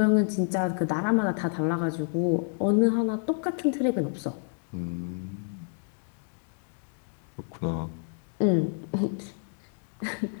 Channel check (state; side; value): silent; right; 59 dB below the other